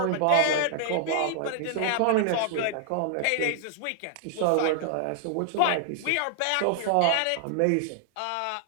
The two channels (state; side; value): different; both; correlation -0.01